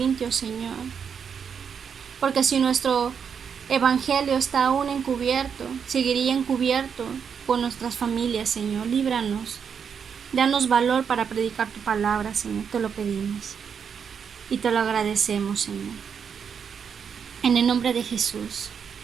Señor. Porque si nuestro evangelio está aún encubierto, seguiría encubierto por nuestras familias, Señor. Líbranos. Danos valor para predicar tu palabra, Señor. Te lo pedimos. Y te lo agradecemos, Señor. En el nombre de Jesús.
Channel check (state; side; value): quieter; left; 7.0 dB